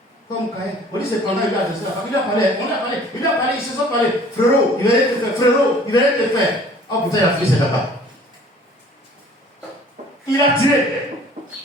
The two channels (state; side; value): normal; both; correlation 0.51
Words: comme Caïn. On dit c'est pendant il a adressé la femme. Il a parlé, ils se sont parlé. Frérot, il va rien te faire. Frérot, il va rien te faire. Oh putain, il a fait ses là-bas. Il a tiré.